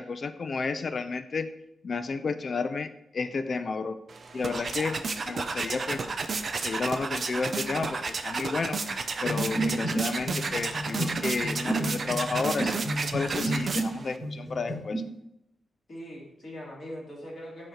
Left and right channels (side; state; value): both; normal; correlation 0.86